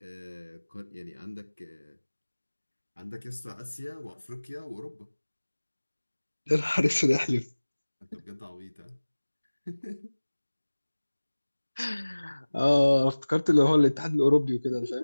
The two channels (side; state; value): both; inverted; correlation -1.00